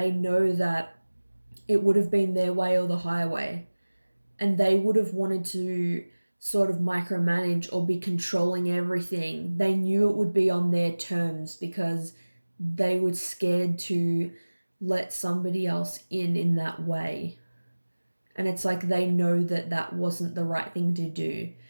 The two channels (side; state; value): both; inverted; correlation -1.00